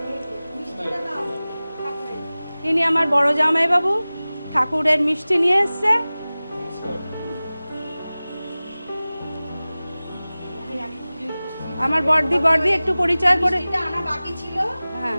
ইনি আমার বড় জামাইবাবু, ঠাকুরের মিষ্টি নিয়ে এসছে। আমার বড়দি একটু পরিচয় করে। হ্যাঁ,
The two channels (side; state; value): both; inverted; correlation -0.98